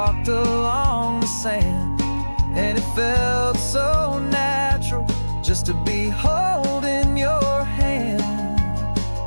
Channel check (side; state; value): both; inverted; correlation -1.00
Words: along the sand, and it felt so natural just to be holding your hand.